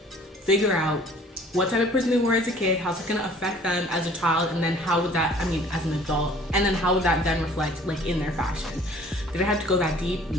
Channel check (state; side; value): normal; both; correlation 0.52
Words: figure out what type of person they were as a kid, how's it gonna affect them as a child, and then how would that, I mean, as an adult, and then how would that then reflect like in their fashion. Did I have to go that deep?